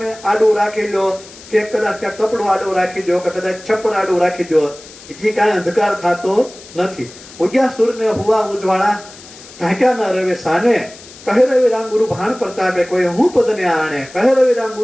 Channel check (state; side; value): noise; left; hiss, 19 dB below the sound